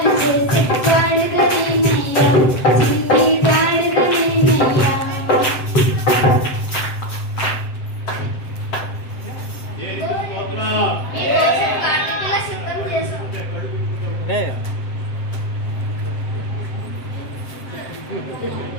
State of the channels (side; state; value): right; late; 7.7 ms